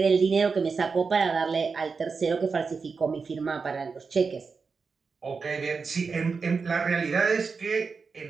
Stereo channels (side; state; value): left; quieter; 4.9 dB